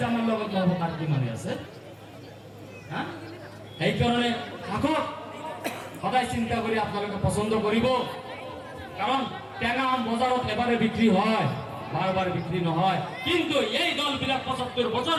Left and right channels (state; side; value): identical; both; correlation 1.00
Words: আমাৰ লগত নহ'ব তাৰ কি মানে আছে সেইকাৰণে থাকক সদায় চিন্তা কৰি আপোনালোকে পছন্দ কৰিব কাৰণ টেঙা আম বজাৰত এবাৰে বিক্ৰী হয় বাৰ বাৰ বিক্ৰী নহয় কিন্তু এই দলবিলাক ৭৫ বছৰ